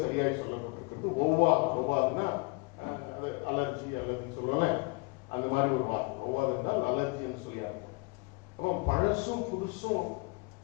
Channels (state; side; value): quieter; right; 28.7 dB